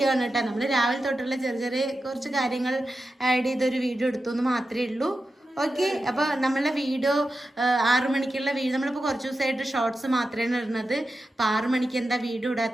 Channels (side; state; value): both; normal; correlation 0.91